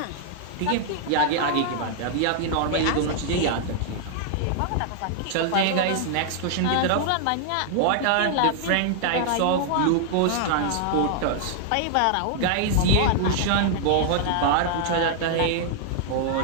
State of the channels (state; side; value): different; both; correlation -0.01